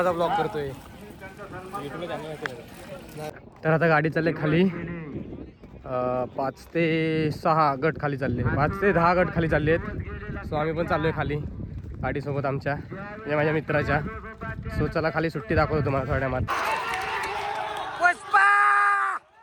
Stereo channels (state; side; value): identical; both; correlation 1.00